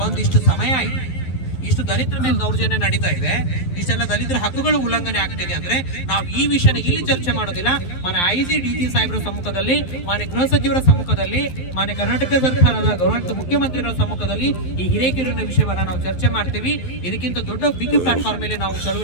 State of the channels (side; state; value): right; late; 11 ms